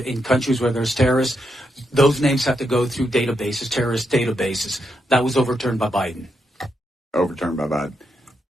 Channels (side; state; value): both; normal; correlation 0.82